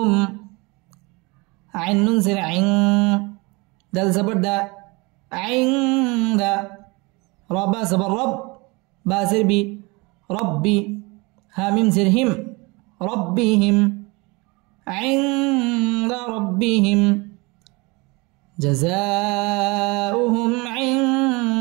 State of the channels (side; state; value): left; quieter; 26.3 dB